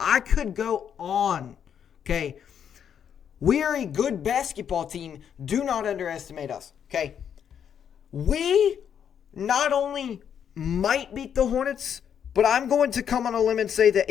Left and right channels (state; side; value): quieter; right; 8.4 dB